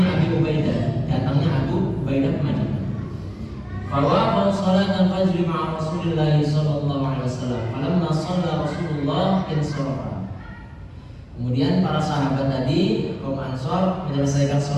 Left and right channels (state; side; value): identical; both; correlation 1.00